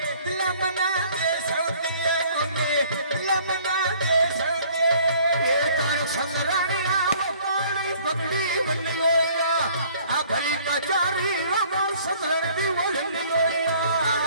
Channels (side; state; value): both; inverted; correlation -0.56